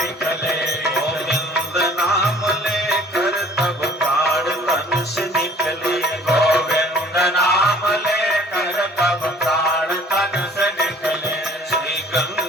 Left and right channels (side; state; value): both; normal; correlation 0.53